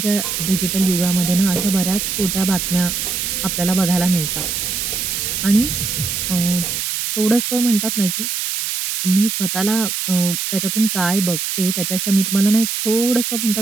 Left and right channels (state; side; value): noise; right; hiss, 2 dB below the sound